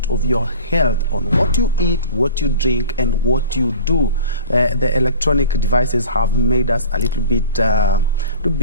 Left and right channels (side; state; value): both; inverted; correlation -0.40